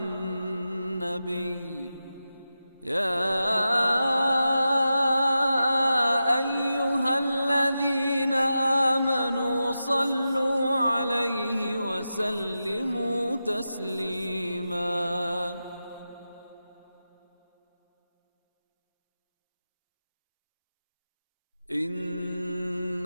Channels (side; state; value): both; inverted; correlation -0.91